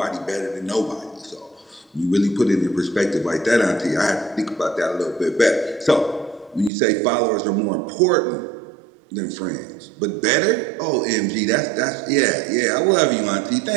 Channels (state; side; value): drops out; left; at 6.7 s